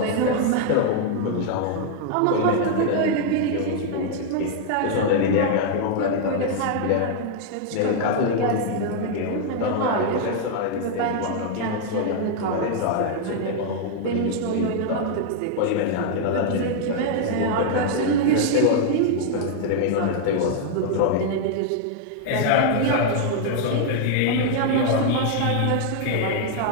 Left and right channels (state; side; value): different; both; correlation 0.00